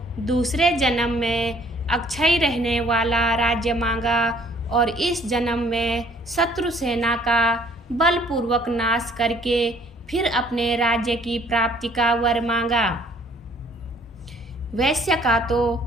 दूसरे जन्म में अक्षय रहने वाला राज्य मांगा और इस जन्म में शत्रु सेना का बलपूर्वक नाश करके फिर अपने राज्य की प्राप्ति का वर मांगा। वैश्य का तो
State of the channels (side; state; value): both; normal; correlation 0.59